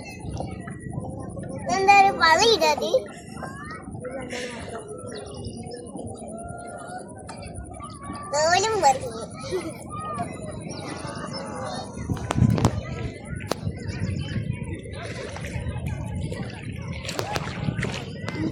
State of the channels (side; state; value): both; identical; correlation 1.00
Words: എന്താ ഒരു പളിയിടത്? തോലും പറഞ്ഞു.